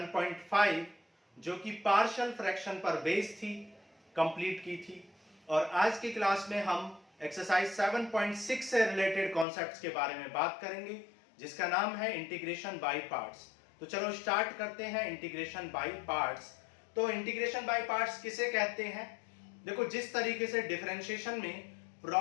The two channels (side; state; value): right; drops out; at 9.5 s